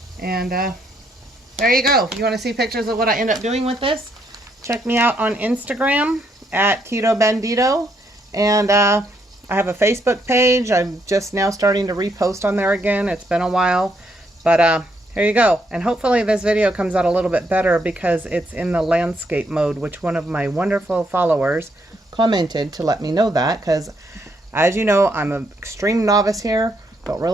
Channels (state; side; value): normal; both; correlation 0.74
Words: And there you go. If you want to see pictures of what I end up doing with this, check me out on Instagram at Keto Bandito. And I have a Facebook page. I'm just now starting to repost on there again. It's been a while. But here you go. And hopefully this video comes out a little bit better because it's in the landscape mode, which one of my wonderful followers commented to let me know that. Because as you know, I'm an extreme novice here. Don't